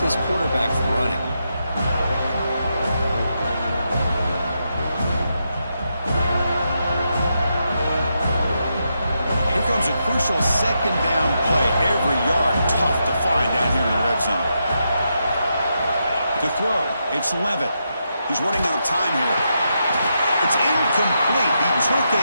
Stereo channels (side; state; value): both; inverted; correlation -0.83